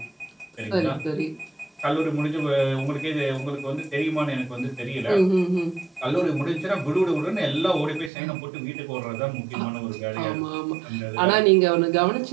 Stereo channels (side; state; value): left; drops out; at 8.1 s